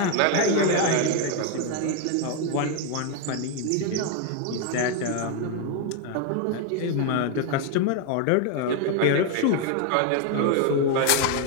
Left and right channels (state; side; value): different; both; correlation 0.01